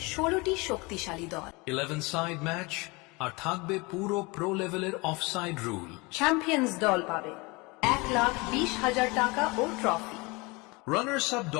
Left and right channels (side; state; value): right; quieter; 25.9 dB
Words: 16টি শক্তিশালী দল। 11 সাইড ম্যাচ আর থাকবে পুরো প্রো লেভেলের অফসাইড রুল। চ্যাম্পিয়ন্স দল পাবে 1,20,000 টাকা ও ট্রফি। রানার্স আপ